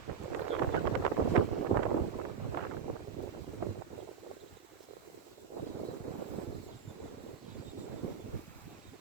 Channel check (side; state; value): left; quieter; 7.1 dB